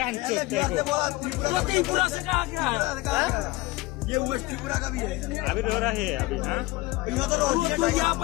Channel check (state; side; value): quieter; right; 20.6 dB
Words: चोद तेरे को। तो त्रिपुरा से कहा गया है? ये वेस्ट त्रिपुरा का भी है। अभी रो रहा है अभी। हाँ तू